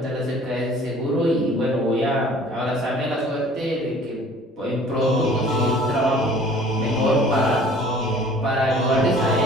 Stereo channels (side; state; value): both; normal; correlation 0.51